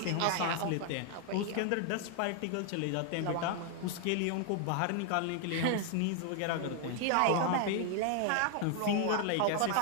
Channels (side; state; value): both; different; correlation 0.00